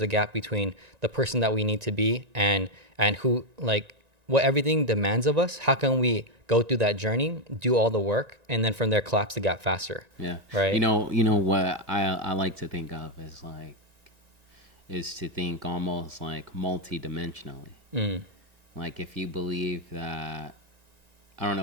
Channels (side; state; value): left; late; 1.9 ms